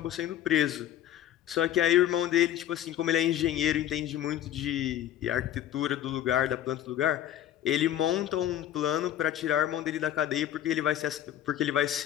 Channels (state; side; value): quieter; right; 11.7 dB